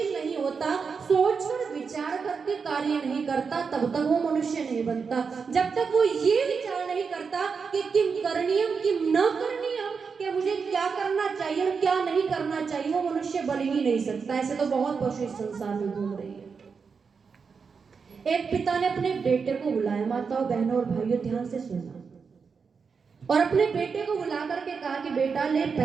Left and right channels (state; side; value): quieter; left; 5.5 dB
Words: नहीं होता, सोचकर विचार करके कार्य नहीं करता, तब तक वो मनुष्य नहीं बनता। जब तक वो ये विचार नहीं करता कि किम करणीयम किम न करणीयम, कि मुझे क्या करना चाहिए और क्या नहीं करना चाहिए, वो मनुष्य बन ही नहीं सकता। ऐसे तो बहुत पशु इस संसार में घूम रही है। एक पिता ने अपने बेटे को बुलाया, माताओं, बहनों और भाइयों ध्यान से सुनना, और अपने बेटे को बुला करके कहा कि बेटा ले